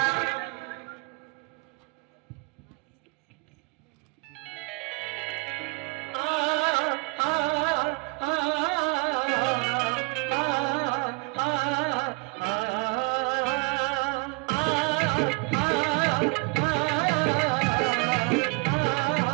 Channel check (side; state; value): left; quieter; 30.5 dB